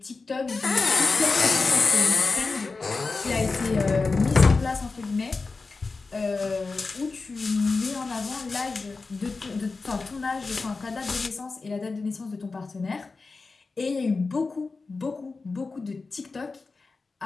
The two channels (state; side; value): quieter; right; 4.0 dB